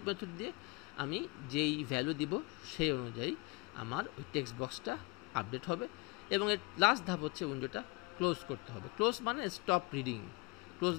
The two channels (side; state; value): right; quieter; 24.9 dB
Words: মেথড দিয়ে আমি যেই ভ্যালু দিব সেই অনুযায়ী আমার ওই টেক্সট বক্সটা আপডেট হবে। এবং এর লাস্ট ধাপ হচ্ছে উইন্ডোটা ক্লোজ করতে হবে। ক্লোজ মানে stop reading, close